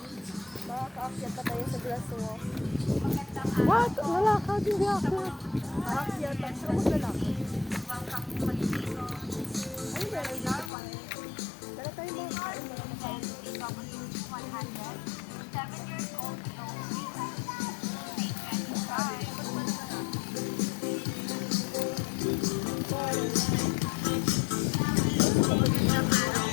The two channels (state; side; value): drops out; right; at 10.7 s